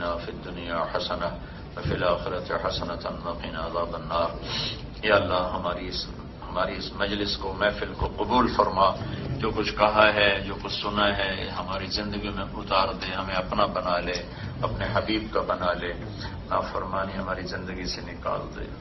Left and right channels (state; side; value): identical; both; correlation 1.00